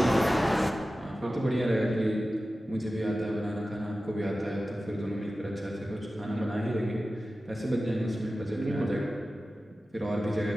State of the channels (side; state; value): both; normal; correlation 0.95